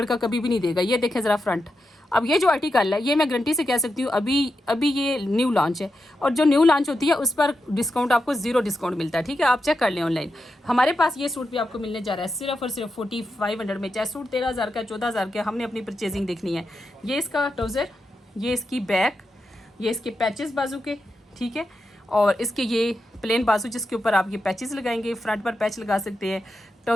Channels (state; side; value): normal; both; correlation 0.87